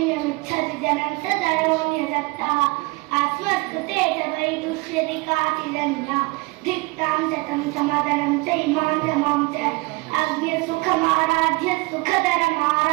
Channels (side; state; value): left; quieter; 25.3 dB